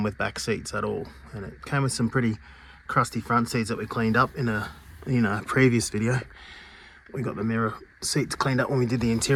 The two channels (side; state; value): both; identical; correlation 1.00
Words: with back seats at all, and it came with some pretty crusty front seats that we cleaned up in a previous video. We got the mirror seats cleaned up when we did the